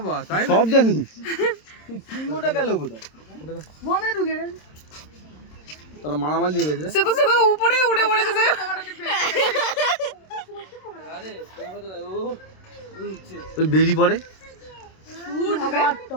তাই সব জানি সিংহটা গেল কোথায় মনে ঢুকে গেল তারা মারামারি দিয়ে গেছে সে তো উপরে উঠে পড়েছে সে ওই বেরি পড়ে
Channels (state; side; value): late; right; 26 ms